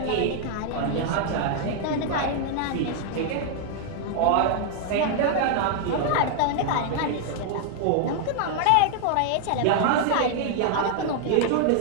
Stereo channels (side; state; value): both; different; correlation 0.00